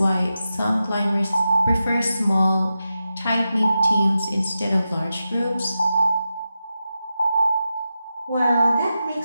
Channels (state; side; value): inverted; both; correlation -0.90